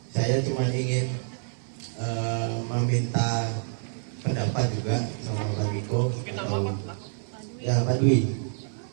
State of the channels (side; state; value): left; silent; 60 dB below the other